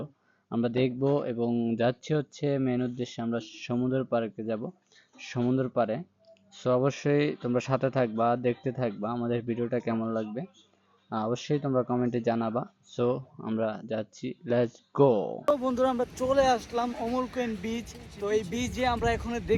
আমরা দেখব এবং যাচ্ছি হচ্ছে মেন উদ্দেশ্যে, আমরা সমুদ্র পাড়ে যাব, সমুদ্র পাড়ে। সো অবশ্যই তোমরা সাথে থাকবা, দেখতে থাকবা আমাদের ভিডিওটা কেমন লাগবে। অবশ্যই তোমরা কমেন্টে জানাবা। সো আমরা যাচ্ছি, লেটস গো। তো বন্ধুরা, আমরা চলে আসলাম অমর কুইন বিচ। তো এই বিচে আমরা এখানে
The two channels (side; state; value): both; identical; correlation 1.00